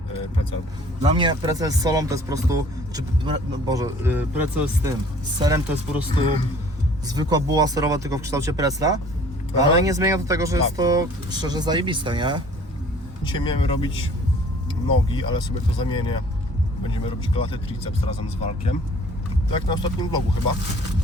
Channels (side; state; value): both; normal; correlation 0.53